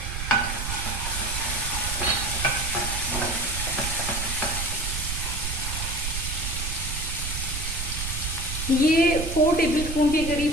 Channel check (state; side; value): noise; right; rumble, 4 dB below the sound